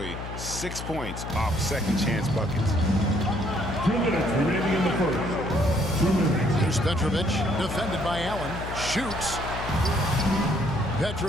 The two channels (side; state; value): left; noise; hum, 8 dB below the sound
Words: 6 points off second chance buckets. 2 minutes remaining in the first. 2 minutes. Here's Petrovic, defended by Allen. Shoots.